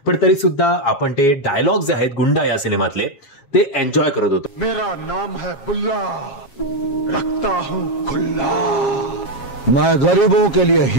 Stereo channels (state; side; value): late; right; 7.4 ms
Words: पण तरी सुद्धा आपण ते डायलॉग जे आहेत गुंडा या सिनेमातले ते एन्जॉय करत होतो. मेरा नाम है बुल्ला, रखता हूं खुल्ला. मैं गरीबों के लिए